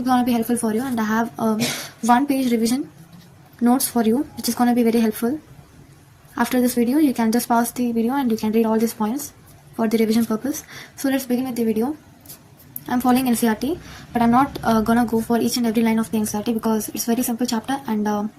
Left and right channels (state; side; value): identical; both; correlation 1.00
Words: going to be helpful for you, and I have 1-page revision notes for you, which is going to be very helpful. After this video, you can just pause the video and you can read all these points for the revision purpose. So let's begin with the video. I'm following NCERT, but I'm not gonna go for each and every line of the NCERT because it's very simple chapter, and